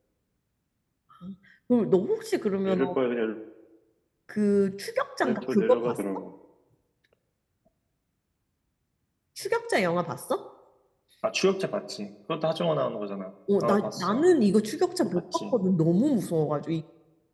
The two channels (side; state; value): both; identical; correlation 1.00